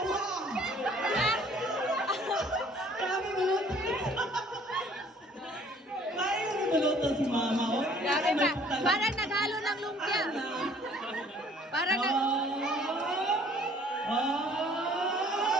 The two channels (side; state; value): both; normal; correlation 0.57